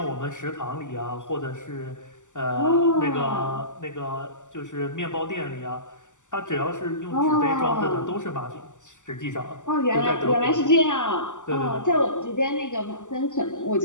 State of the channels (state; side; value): late; right; 0.86 ms